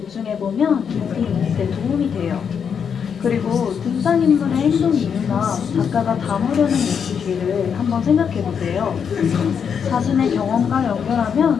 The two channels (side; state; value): right; quieter; 7.1 dB